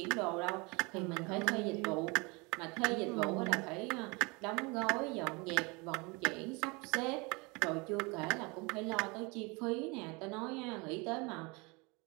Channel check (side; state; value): left; quieter; 27.8 dB